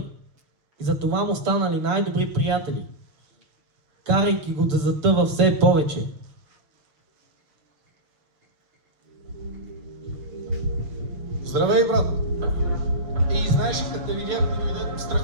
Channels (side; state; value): left; late; 6.8 ms